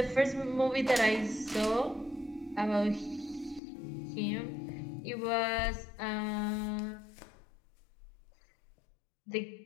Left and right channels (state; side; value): drops out; right; at 3.6 s